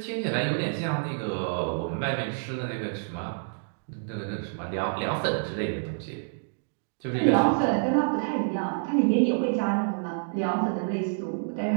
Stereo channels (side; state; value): left; silent; digital silence